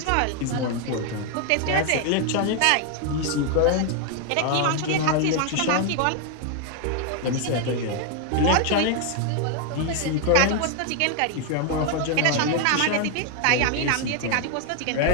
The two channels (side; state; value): both; different; correlation 0.00